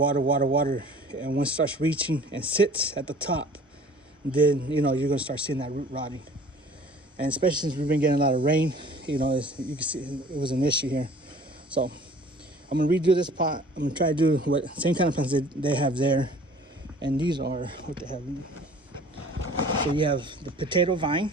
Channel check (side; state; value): both; normal; correlation 0.49